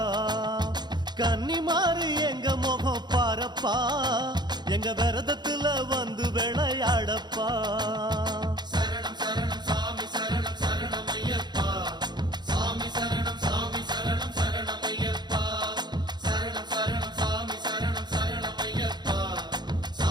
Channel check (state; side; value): late; left; 0.21 ms